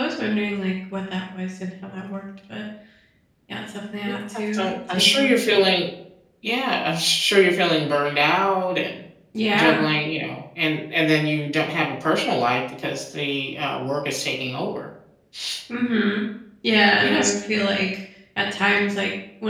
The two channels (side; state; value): both; identical; correlation 1.00